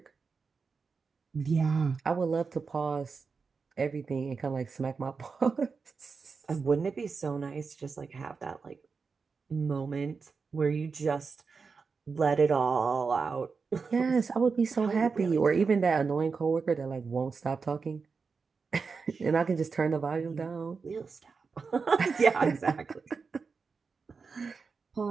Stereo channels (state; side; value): quieter; left; 5.0 dB